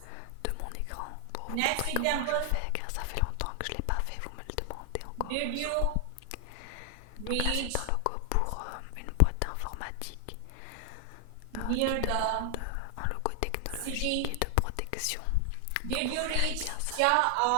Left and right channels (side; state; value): both; different; correlation 0.00